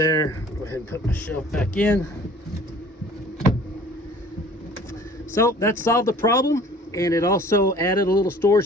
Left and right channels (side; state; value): both; normal; correlation 0.50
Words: go ahead and put my shelf back in. So that solved the problem, and it also added a little